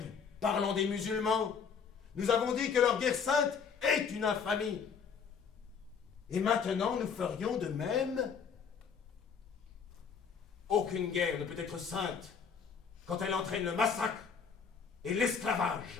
parlant des musulmans, nous avons dit que leur guerre sainte est une infamie. Et maintenant, nous ferions de même? Aucune guerre ne peut être sainte quand elle entraîne le massacre et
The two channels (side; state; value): right; quieter; 6.3 dB